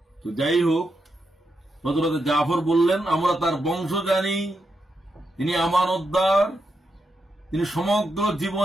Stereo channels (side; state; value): both; normal; correlation 0.84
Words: তো যাই হোক, হযরত জাফর বললেন, আমরা তার বংশ জানি, তিনি আমানতদার, তিনি সমগ্র